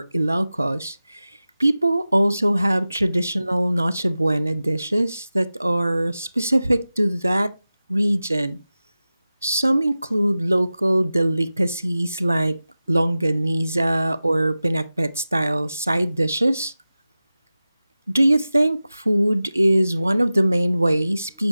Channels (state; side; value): inverted; both; correlation -0.95